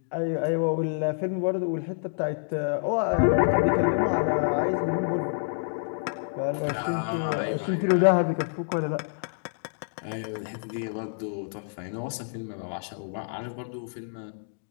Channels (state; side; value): silent; right; digital silence